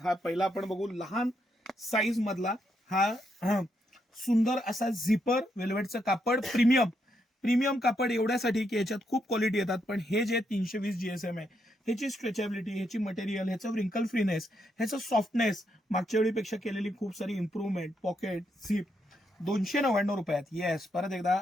हा पहिला आपण बघू लहान साईज मधला हा सुंदर असा झिपर वेल्वेटचं कापड प्रीमियम कापड एवढ्यासाठी की याच्यात खूप क्वालिटी येतात. पण हे जे 320 GSM आहे, ह्याची स्ट्रेचेबिलिटी, ह्याची मटेरियल, ह्याचं रिंकल फ्रीनेस, ह्याचं सॉफ्टनेस, मागच्या वेळीपेक्षा केलेली खूप सारी इम्प्रूव्हमेंट, पॉकेट झिप 299 रुपयात. येस, परत एकदा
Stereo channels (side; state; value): both; normal; correlation 0.79